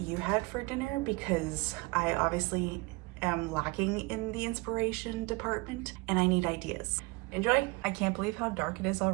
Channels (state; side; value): quieter; left; 25.5 dB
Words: had for dinner because I obviously am lacking in the inspiration department and I need ideas. Enjoy! I can't believe how dark it is